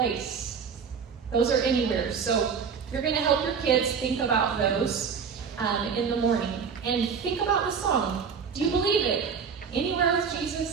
Those are anywhere. So you're going to help your kids think about those in the morning. And think about the song. Do you believe it? Anywhere with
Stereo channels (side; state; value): left; quieter; 6.3 dB